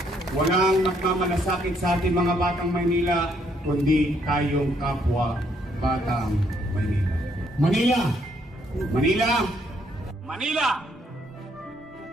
Walang nagmamalasakit sa ating mga batang Maynila, kundi tayong kapwa batang Maynila. Manila! Manila! Manila!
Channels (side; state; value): both; normal; correlation 0.70